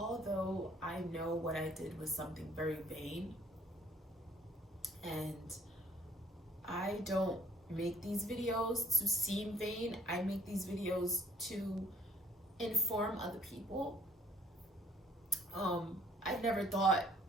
I know what I did was something very vain, and I don't make these videos to seem vain, I make these videos to inform other people. I never thought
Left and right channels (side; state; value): both; normal; correlation 0.60